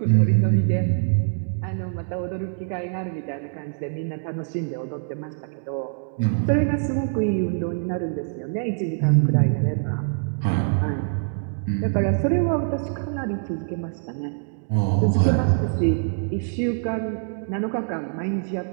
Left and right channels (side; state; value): left; silent; digital silence